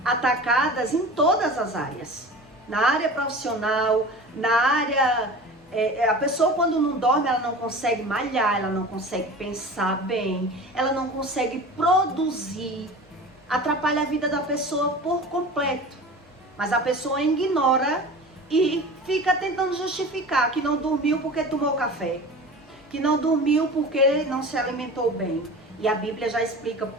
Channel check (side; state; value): both; normal; correlation 0.36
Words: atacadas em todas as áreas. Na área profissional, na área... a pessoa quando não dorme, ela não consegue malhar, ela não consegue pensar bem, ela não consegue produzir. Atrapalha a vida da pessoa por completo. Mas a pessoa ignora e fica tentando justificar que não dormiu porque tomou café, que não dormiu porque não se alimentou bem. E a Bíblia já explica,